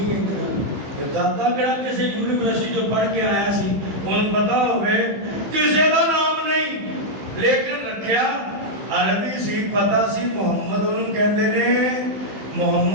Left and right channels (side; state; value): left; late; 15 ms